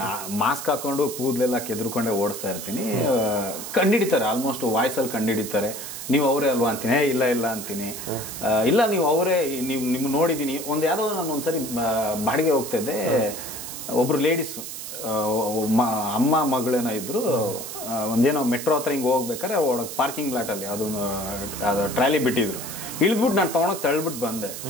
ಮಾಸ್ಕ್ ಹಾಕೊಂಡು ಕೂದಲೆಲ್ಲ ಕೆದ್ರುಕೊಂಡೇ ಓಡಿಸ್ತಾ ಇರ್ತೀನಿ. ಕಂಡಿಡಿತಾರೆ, ಆಲ್ಮೋಸ್ಟ್ ವಾಯ್ಸಲ್ಲಿ ಕಂಡಿಡಿತಾರೆ. ನೀವು ಅವರೇ ಅಲ್ವಾ ಅಂತೀನಿ, ಇಲ್ಲ ಇಲ್ಲ ಅಂತೀನಿ. ಇಲ್ಲ ನೀವು ಅವರೇ, ನಿಮ್ಗೆ ನೋಡಿದ್ದೀನಿ. ಯಾವುದೋ ನಾನು ಒಂದ್ಸರಿ ಬಾಡಿಗೆ ಹೋಗ್ತಾ ಇದ್ದೆ, ಒಬ್ರು ಲೇಡೀಸು ಅಮ್ಮ ಮಗಳೇನೋ ಇದ್ರು, ಒಂದೇನೋ ಮೆಟ್ರೋ ಹತ್ರ ಹಿಂಗೆ ಹೋಗ್ಬೇಕಾರೆ ಒಳಗೆ ಪಾರ್ಕಿಂಗ್ ಲಾಟಲ್ಲಿ ಅದು ಟ್ರಾಲಿ ಬಿಟ್ಟಿದ್ರು. ಇಳಿದ್ಬಿಟ್ಟು ನಾನು ತೊಗೊಂಡೋಗಿ ತಳ್ಬಿಟ್ಟು ಬಂದೆ.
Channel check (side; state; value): right; noise; hiss, 9 dB below the sound